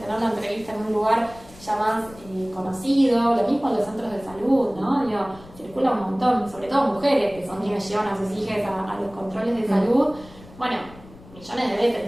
tener la entrevista en un lugar ya más conocido, lo mismo en los centros de salud, ¿no? Circula un montón, sobre todo mujeres que son quienes llevan a sus hijas a los controles de salud. Bueno, millones de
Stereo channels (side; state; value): left; noise; rumble, 21 dB below the sound